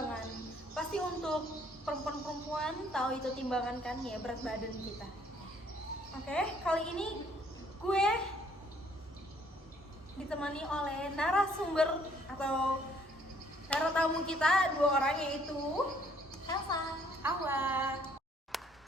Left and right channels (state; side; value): normal; both; correlation 0.63